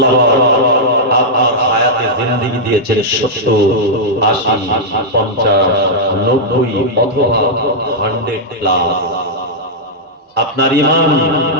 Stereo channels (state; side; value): normal; both; correlation -0.07